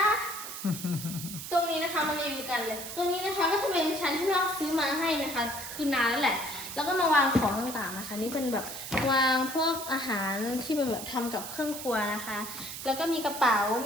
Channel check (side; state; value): right; noise; hiss, 9 dB below the sound